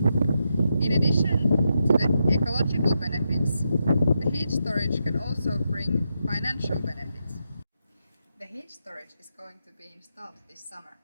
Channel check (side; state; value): both; inverted; correlation -0.84